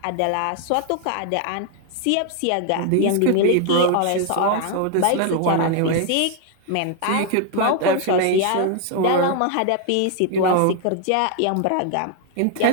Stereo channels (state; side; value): different; both; correlation 0.01